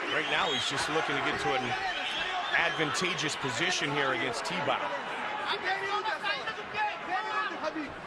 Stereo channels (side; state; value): both; identical; correlation 1.00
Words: Right now he's just looking to get to an advantageous position here against T-Bow.